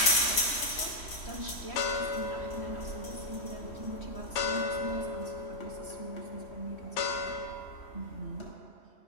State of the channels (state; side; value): late; right; 3.1 ms